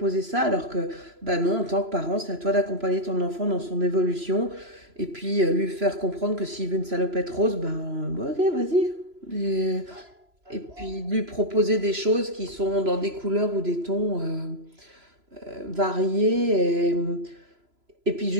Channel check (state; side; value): late; left; 3.0 ms